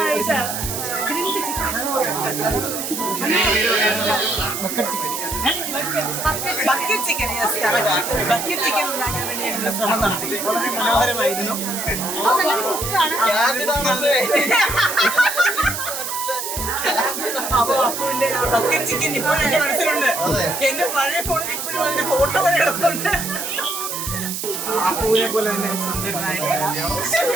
ബക്കറ്റ് ചിക്കൻ ഉണ്ടാക്കാൻ വേണ്ടി ഞങ്ങൾ ശ്രമം നടത്തി. വളരെ മനോഹരമായിരുന്നു. അപ്പൊ അപ്പുവിന്റെ ബക്കറ്റ് ചിക്കൻ ഇപ്പോഴും എന്റെ മനസ്സിലുണ്ട്. എന്റെ പഴയ ഫോണിൽ ഇപ്പോഴും അതിന്റെ ഫോട്ടോ വരെ എടുക്കുന്നുണ്ട്. അപ്പുവിനെ പോലെ തന്നെ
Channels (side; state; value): right; noise; hiss, 5 dB below the sound